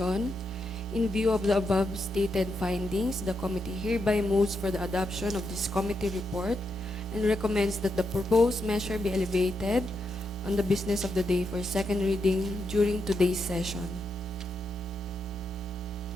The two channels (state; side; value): normal; both; correlation 0.82